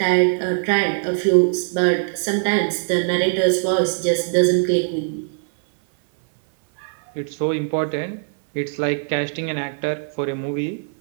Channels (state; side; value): silent; left; 57 dB below the other